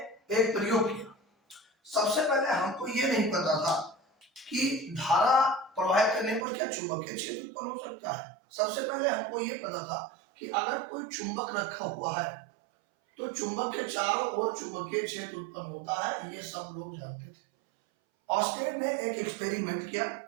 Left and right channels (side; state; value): left; drops out; at 6.5 s